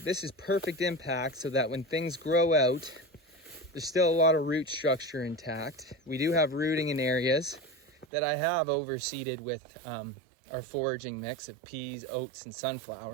is perfect impact so that when things grow out, there's still a lot of root structure intact. We do have rooting in areas that I have overseeded with our foraging mix of peas, oats, and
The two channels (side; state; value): left; drops out; at 8.1 s